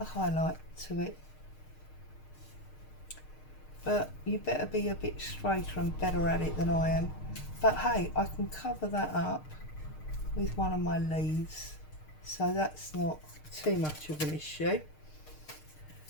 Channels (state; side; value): late; right; 6.5 ms